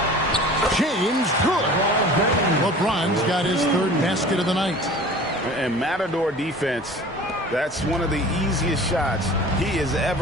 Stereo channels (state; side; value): normal; both; correlation 0.42